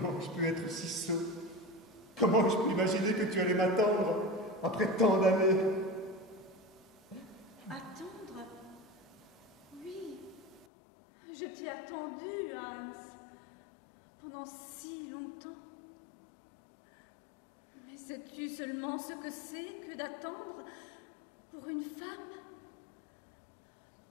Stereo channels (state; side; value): drops out; right; at 10.7 s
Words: je peux être si sot? Comment je peux imaginer que tu allais m'attendre après tant d'années? Attendre? Oui, je t'ai attendu, Hans, pendant si longtemps. Mais sais-tu seulement ce que c'est que d'attendre pour une femme?